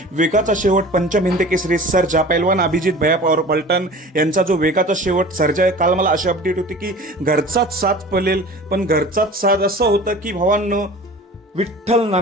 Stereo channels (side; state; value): both; normal; correlation 0.40